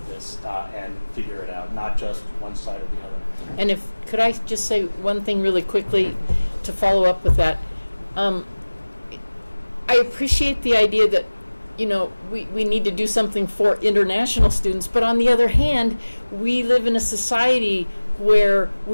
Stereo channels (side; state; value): both; inverted; correlation -1.00